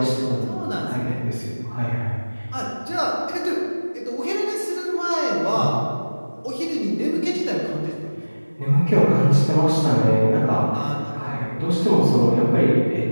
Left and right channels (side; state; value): both; inverted; correlation -1.00